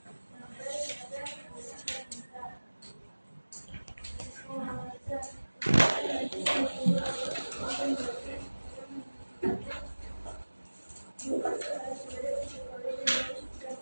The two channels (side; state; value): both; inverted; correlation -1.00